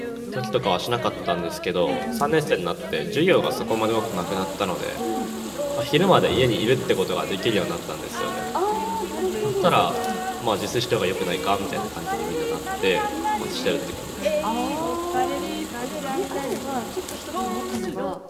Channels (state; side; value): identical; both; correlation 1.00